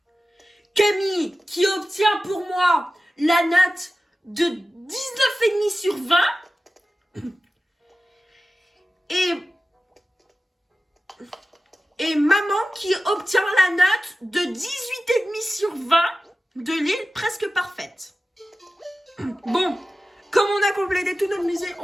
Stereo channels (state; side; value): normal; both; correlation 0.94